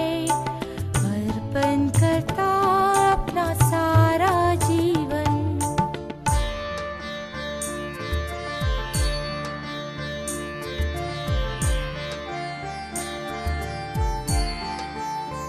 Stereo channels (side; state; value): both; identical; correlation 1.00